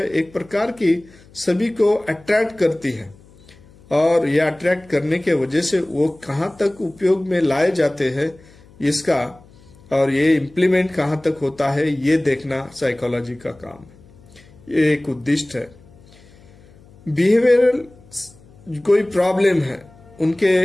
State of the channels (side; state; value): left; noise; hum, 26 dB below the sound